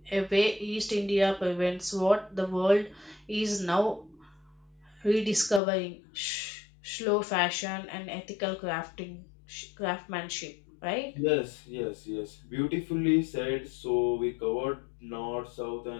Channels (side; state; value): right; drops out; at 5.6 s